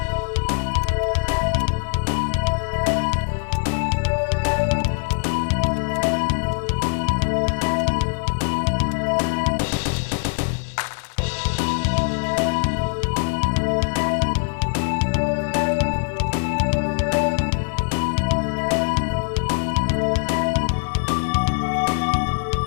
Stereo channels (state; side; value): silent; right; 64 dB below the other